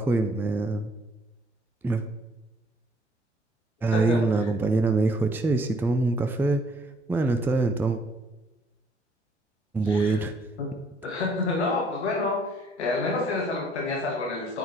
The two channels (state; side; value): normal; both; correlation 0.63